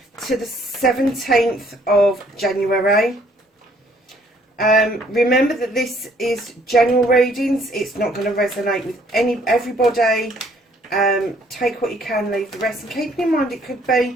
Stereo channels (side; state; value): both; normal; correlation 0.63